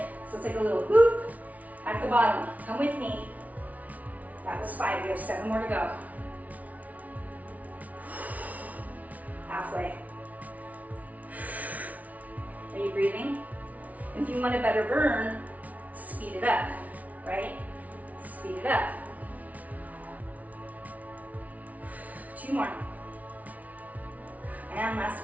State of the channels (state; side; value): late; left; 0.071 ms